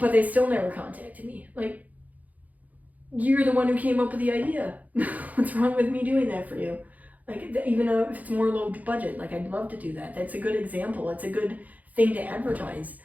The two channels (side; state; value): left; late; 0.078 ms